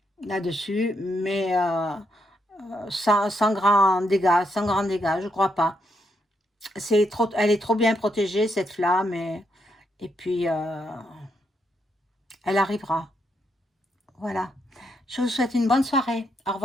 là-dessus, mais sans grand dégâts, je crois pas. Elle est trop bien protégée, cette flamme, et puis elle arrivera. Voilà. Je vous souhaite une bonne soirée. Au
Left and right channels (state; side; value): normal; both; correlation 0.78